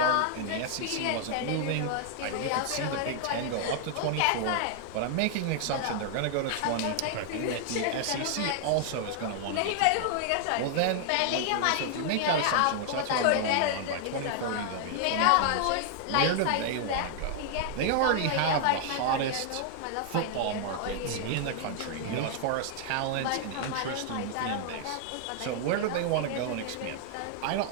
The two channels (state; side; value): different; both; correlation 0.00